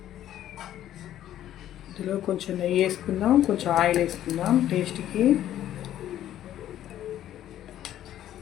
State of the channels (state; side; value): quieter; right; 12.0 dB